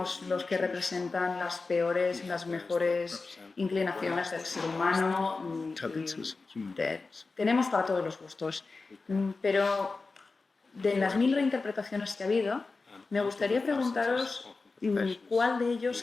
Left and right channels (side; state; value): right; quieter; 3.9 dB